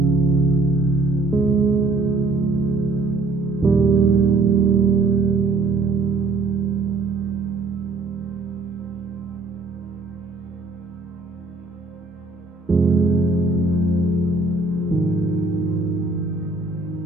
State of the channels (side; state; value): left; quieter; 3.4 dB